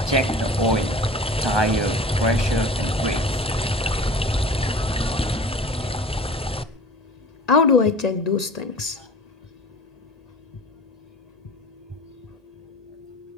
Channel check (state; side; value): normal; both; correlation 0.41